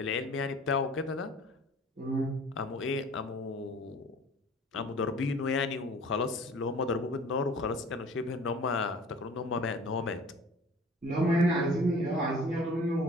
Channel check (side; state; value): both; normal; correlation 0.47